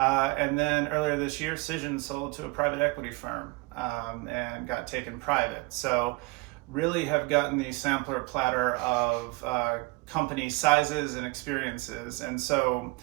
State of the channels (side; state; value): left; quieter; 26.3 dB